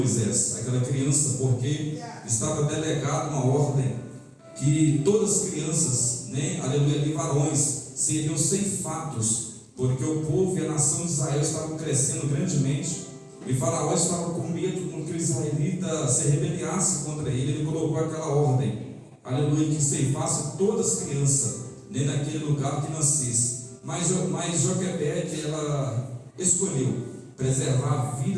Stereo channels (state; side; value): identical; both; correlation 1.00